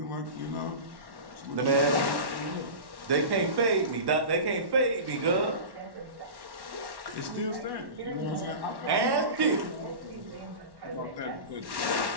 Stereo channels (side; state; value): left; late; 1.1 ms